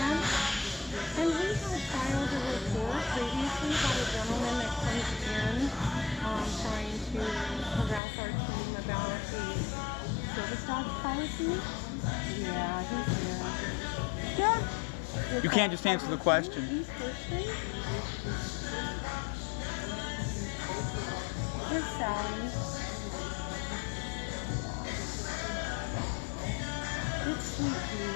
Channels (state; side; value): drops out; right; at 8.0 s